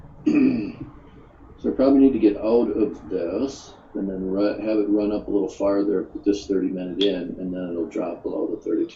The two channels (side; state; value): both; identical; correlation 1.00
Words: So I probably need to get out of this and then have it run up a little farther with this 30-minute in, and then it'll drop below the